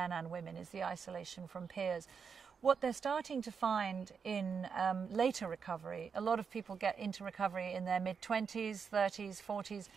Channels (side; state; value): left; quieter; 6.1 dB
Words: and women, is the isolation from peers. What they're starting to find in later recovery, a lot of people get into recovery in their mid-20s, 30s, 40s.